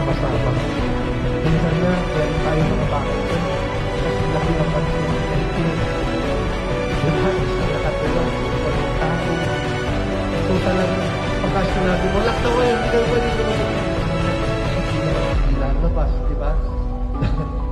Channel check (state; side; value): identical; both; correlation 1.00